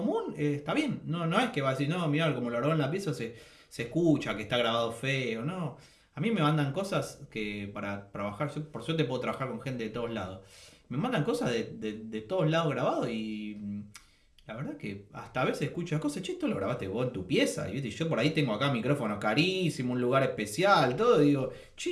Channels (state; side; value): identical; both; correlation 1.00